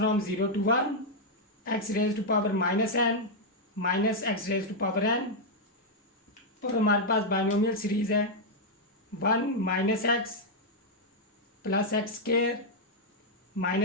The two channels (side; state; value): both; normal; correlation -0.02